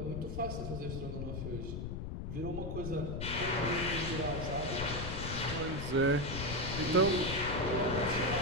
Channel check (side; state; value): left; noise; rumble, 5 dB below the sound